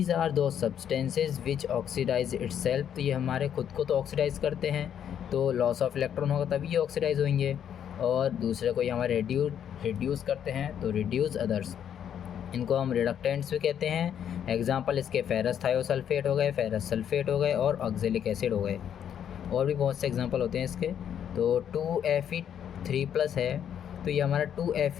आर दो सब्सटेंसेज विच ऑक्सीडाइज इटसेल्फ। तो ये हमारे खुद को तो ऑक्सीडाइज करते हैं, तो लॉस ऑफ इलेक्ट्रॉन होगा तभी ये ऑक्सीडाइज होंगे, और दूसरे को ये हमारे रिड्यूस करते हैं, तो रिड्यूस अदर्स। इनको हम रिडक्टेंट्स भी कहते हैं। एग्जांपल इसके फेरस थायोसल्फेट हो गए, फेरस सल्फेट हो गए और ऑक्जेलिक एसिड हो गए। और भी बहुत से एग्जांपल होते हैं इसके। तो 2Fe3+ है, तो ये हमारा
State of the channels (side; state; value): right; quieter; 9.2 dB